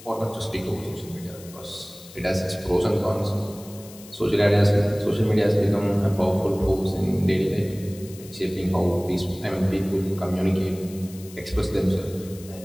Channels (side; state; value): left; noise; hiss, 19 dB below the sound